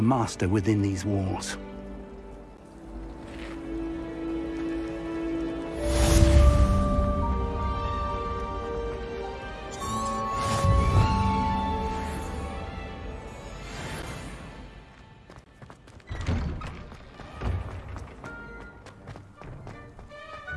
master within these walls.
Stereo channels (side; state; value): both; identical; correlation 1.00